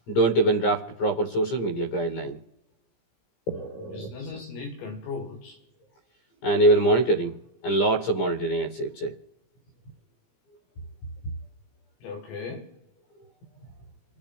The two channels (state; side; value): late; right; 17 ms